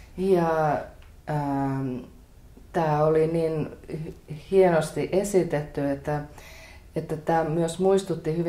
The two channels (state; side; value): identical; both; correlation 1.00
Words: Ja tämä oli niin hienosti esitetty, että tämä myös muistutti